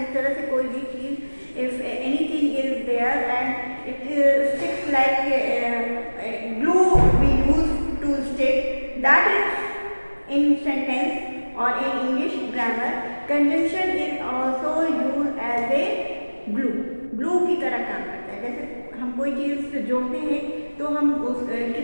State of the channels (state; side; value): inverted; both; correlation -1.00